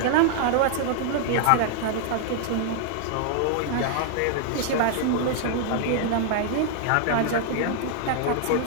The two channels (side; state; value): both; different; correlation 0.00